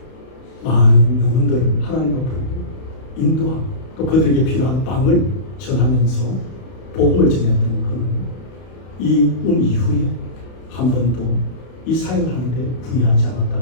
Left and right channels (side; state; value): right; late; 32 ms